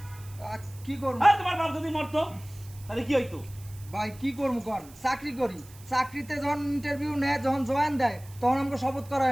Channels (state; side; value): noise; right; hiss, 22 dB below the sound